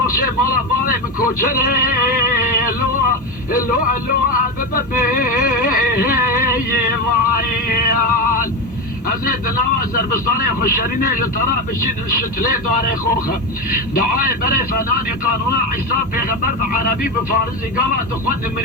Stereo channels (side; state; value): both; normal; correlation 0.16